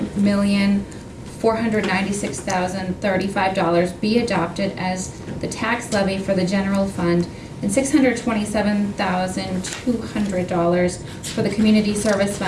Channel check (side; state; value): both; identical; correlation 1.00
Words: be adopted as the tax levy for the general fund and $627,200 for the community service